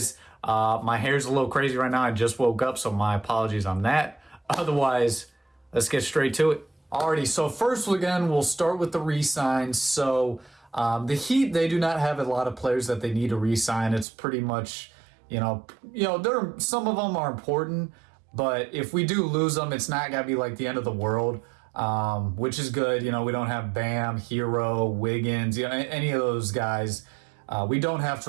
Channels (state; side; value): drops out; left; at 14.1 s